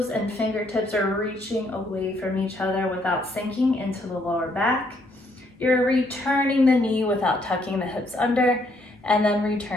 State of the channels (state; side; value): normal; both; correlation 0.71